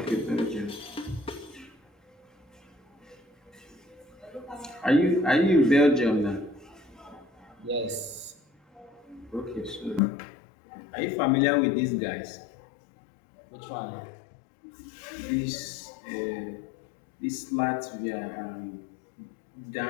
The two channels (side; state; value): right; drops out; at 10.0 s